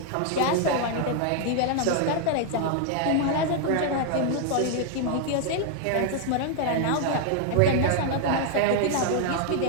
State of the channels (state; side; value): different; both; correlation 0.00